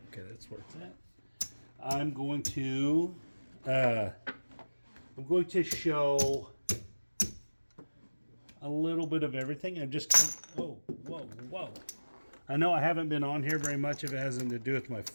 where it's at. I'm going to show a little bit of everything. I'm just whoa. I know I haven't been on here very much if it hasn't to do with my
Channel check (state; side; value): inverted; both; correlation -1.00